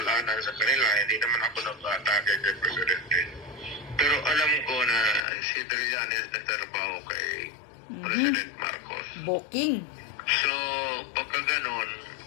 sa kanila. Hindi naman ako nag-atake kay Presidente. Pero alam ko na si Trillanes nagtrabaho kay President Marcos. Booking. So, pagka ganon,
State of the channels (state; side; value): drops out; right; at 5.2 s